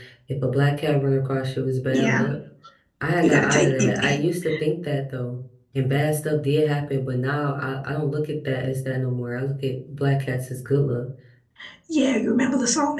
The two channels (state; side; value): identical; both; correlation 1.00